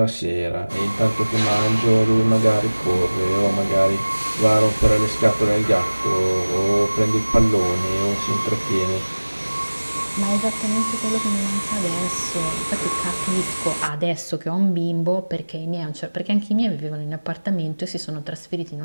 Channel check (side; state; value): both; inverted; correlation -1.00